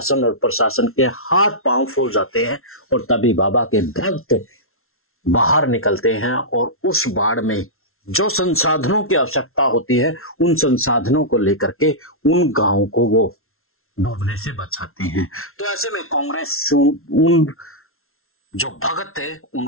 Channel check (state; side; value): late; right; 0.62 ms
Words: और प्रशासन के हाथ पांव फूल जाते हैं और तभी बाबा के भक्त बाहर निकलते हैं और उस बाढ़ में जो संसाधनों की आवश्यकता होती है, उन संसाधनों को लेकर के उन गांवों को वो डूबने से बचाते हैं। तो ऐसे में कांग्रेस उन जो भगत है